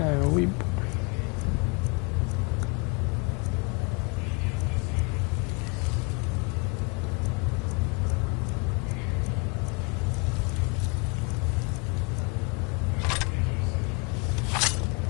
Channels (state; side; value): quieter; right; 31.4 dB